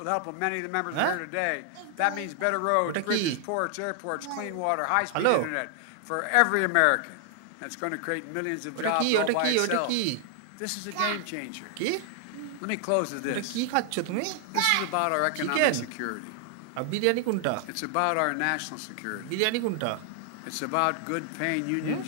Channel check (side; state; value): both; different; correlation 0.00